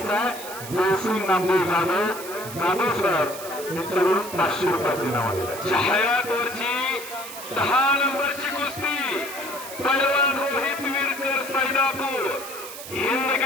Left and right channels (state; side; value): noise; right; hiss, 12 dB below the sound